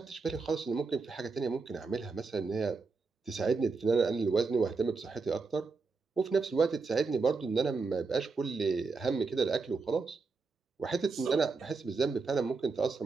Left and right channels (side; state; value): left; quieter; 4.4 dB